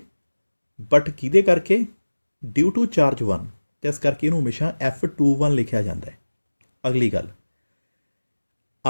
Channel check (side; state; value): both; inverted; correlation -1.00